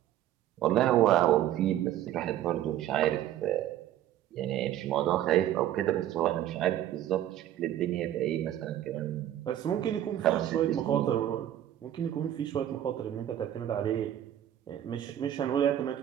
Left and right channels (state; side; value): quieter; left; 11.8 dB